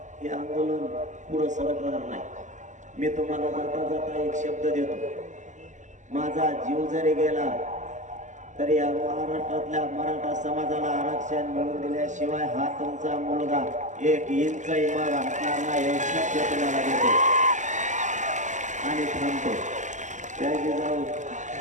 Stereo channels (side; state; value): left; late; 0.35 ms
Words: हे आंदोलन पुढं सरकणार नाही. मी तुम्हाला जाता जाता एक शब्द देतो, माझा जीव जरी गेला तरी या महाराष्ट्रातल्या मराठा समाजाला आरक्षण मिळवून दिल्याशिवाय हा तुमचा मुलगा 1 इंचही माग हटणार नाही, हे शब्द तुम्हाला देतो आणि थांबतो. जय जिजाऊ,